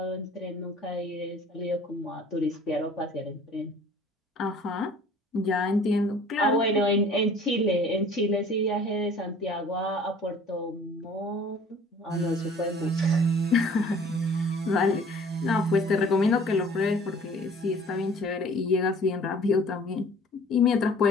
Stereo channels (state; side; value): normal; both; correlation 0.50